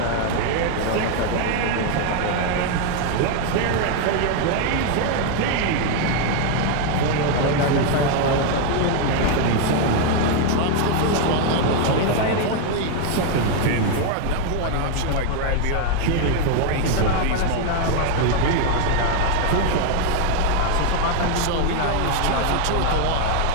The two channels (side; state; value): both; different; correlation 0.00